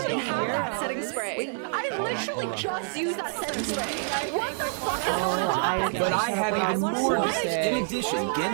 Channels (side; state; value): left; silent; digital silence